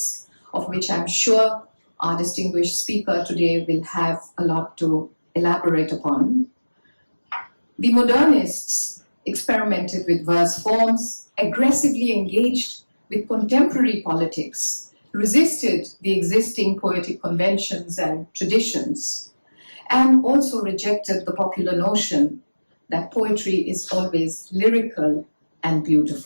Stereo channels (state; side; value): inverted; both; correlation -1.00